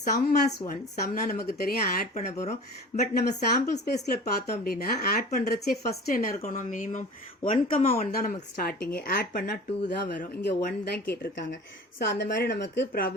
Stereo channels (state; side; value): normal; both; correlation 0.40